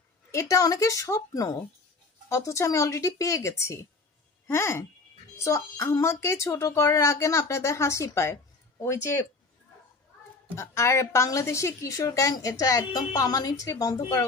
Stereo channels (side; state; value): right; quieter; 3.8 dB